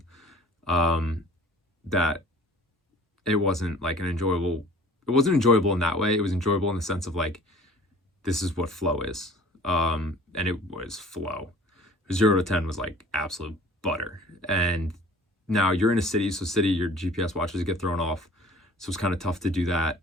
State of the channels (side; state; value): both; normal; correlation 0.47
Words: that it wasn't like it wasn't enjoyable in that way. It was enjoyable in the sense of like, this is what flow is. And it was flow. 0 to 10 was like absolute butter. And now you're in a city, so city, your GPS watches get thrown off. So it's kind of tough to do that.